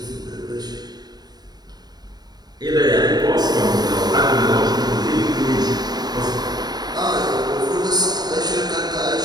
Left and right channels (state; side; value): late; left; 0.19 ms